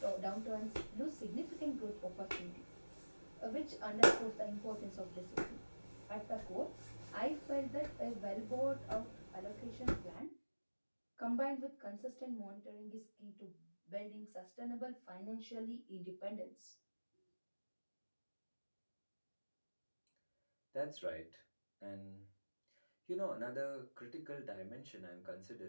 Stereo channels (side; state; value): both; inverted; correlation -1.00